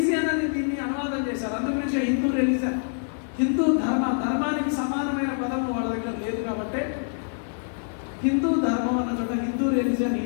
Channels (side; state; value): right; silent; digital silence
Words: అని దీన్ని అనువాదం చేశారు. అందుగురించి హిందూ రిలీజియన్, హిందూ ధర్మానికి సమానమైన పదము వాళ్ళ దగ్గర లేదు. కాబట్టి హిందూ ధర్మం అన్న చోట హిందూ